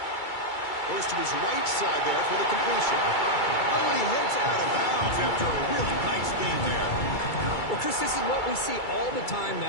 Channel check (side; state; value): right; late; 2.3 ms